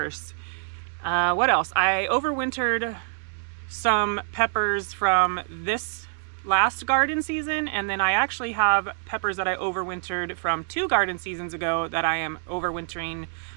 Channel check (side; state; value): left; silent; digital silence